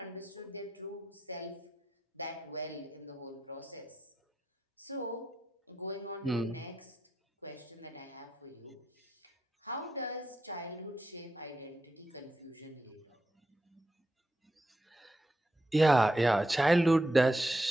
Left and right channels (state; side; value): normal; both; correlation 0.85